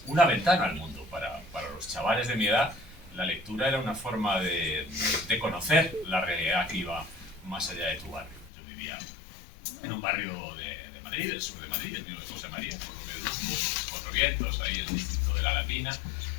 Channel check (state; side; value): drops out; right; at 8.5 s